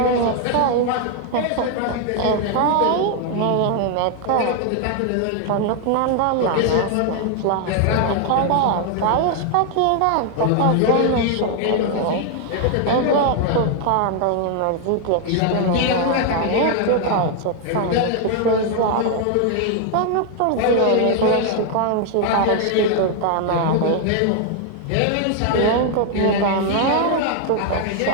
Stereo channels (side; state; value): both; different; correlation 0.00